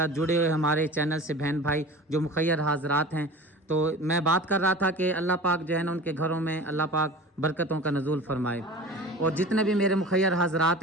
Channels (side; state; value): both; normal; correlation 0.37